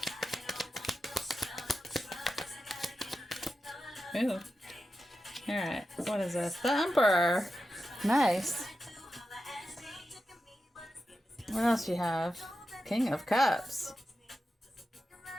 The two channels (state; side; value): normal; both; correlation 0.90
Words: Ooh. Alright. What is this? The Emperor. Nice. What else you have? King of Cups.